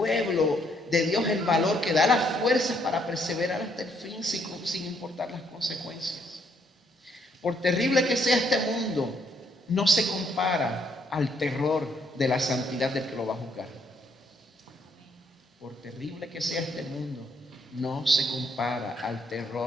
de Dios el valor, que da las fuerzas para perseverar hasta el fin sin importar las consecuencias. Por terrible que sea este mundo, no se compara al terror de la santidad del que lo va a juzgar. Por terrible que sea este mundo, no se compara al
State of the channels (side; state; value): both; normal; correlation 0.71